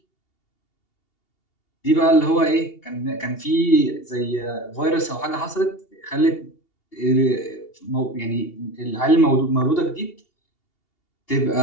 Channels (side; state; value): right; late; 2.8 ms